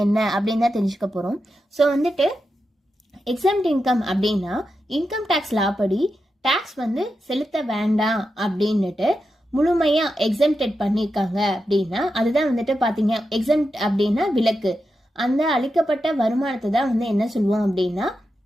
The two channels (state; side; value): normal; both; correlation 0.88